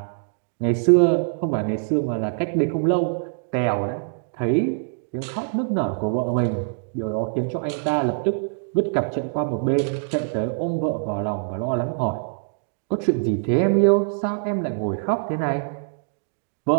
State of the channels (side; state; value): left; silent; digital silence